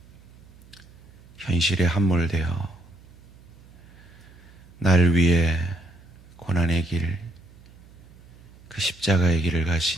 현실에 함몰되어 날 위해 고난의 길, 그 십자가의 길을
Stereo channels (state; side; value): noise; right; hum, 23 dB below the sound